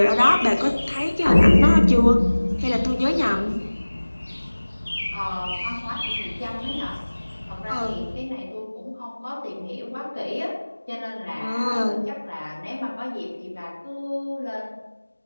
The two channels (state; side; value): inverted; both; correlation -1.00